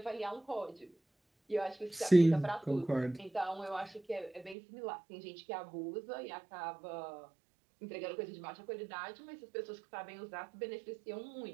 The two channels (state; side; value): drops out; left; at 4.5 s